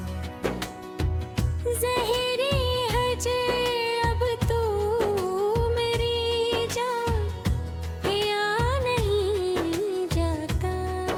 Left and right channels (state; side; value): identical; both; correlation 1.00